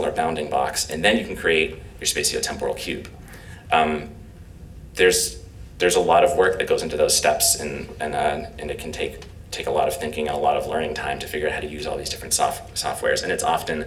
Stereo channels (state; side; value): identical; both; correlation 1.00